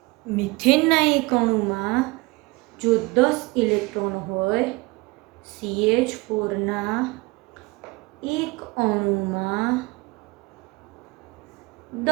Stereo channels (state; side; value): quieter; left; 24.1 dB